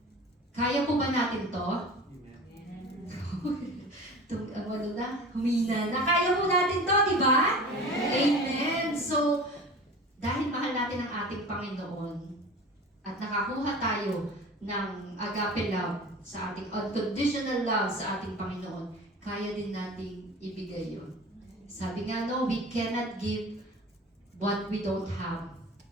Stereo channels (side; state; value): both; normal; correlation 0.38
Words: Kaya po ba natin to? Humina na. Kaya po natin to, di ba? Amen. So, dahil mahal natin ang ating Panginoon at nakakuha tayo ng agape love sa ating unconditional love sa ating Panginoon, kaya din nating ibigay yun. Sabi nga, no, we cannot give what we don't have.